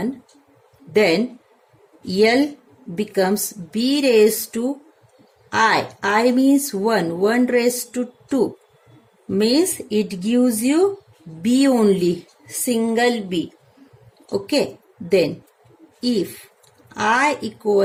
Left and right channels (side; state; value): both; identical; correlation 1.00